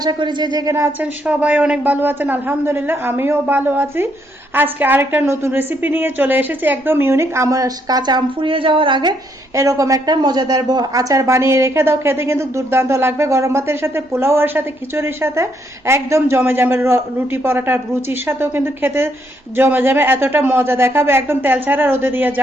করি যে যেখানে আছেন সবাই অনেক ভালো আছেন। আলহামদুলিল্লাহ আমিও ভালো আছি। আজকে আরেকটা নতুন রেসিপি নিয়ে চলে এসেছি, একদম ইউনিক। আমার কাঁচা আম ফুরিয়ে যাওয়ার আগে এরকম একটা মজাদার আচার বানিয়ে রেখে দাও, খেতে কিন্তু দুর্দান্ত লাগবে। গরম ভাতের সাথে, পোলাওয়ের সাথে, খিচুড়ির সাথে একদম জমে যাবে। রুটি পরোটা রুচির সাথেও কিন্তু খেতে জমে যাবে, এতটা মজা দেখাবে। একদম তেল ছাড়া, রোদে দিয়ে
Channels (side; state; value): both; normal; correlation 0.73